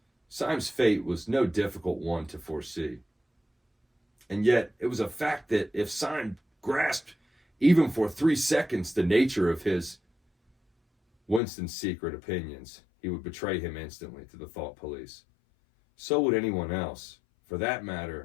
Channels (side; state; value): right; drops out; at 11.4 s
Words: Syme's fate was no difficult one to foresee. And yet, it was a fact that if Syme grasped, even for 3 seconds, the nature of Winston's secret opinions, he would betray him instantly to the thought police. So would anyone else, for that